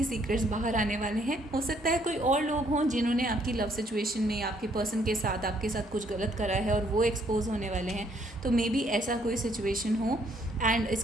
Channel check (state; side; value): normal; both; correlation 0.67